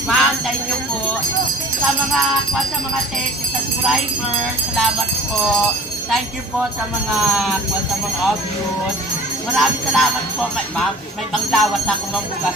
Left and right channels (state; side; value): normal; both; correlation 0.47